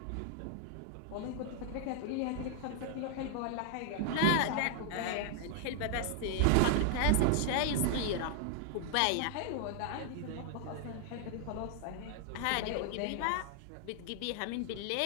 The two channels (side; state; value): both; different; correlation 0.00